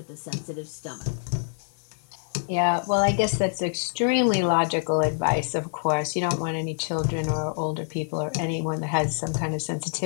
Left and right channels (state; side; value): silent; right; 61 dB below the other